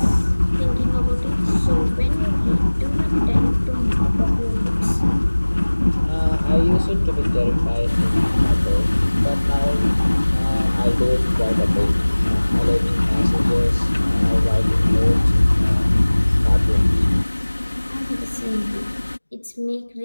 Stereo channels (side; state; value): both; inverted; correlation -1.00